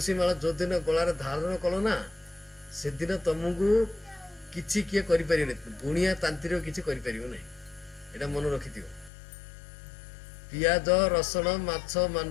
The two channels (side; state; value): right; drops out; at 9.1 s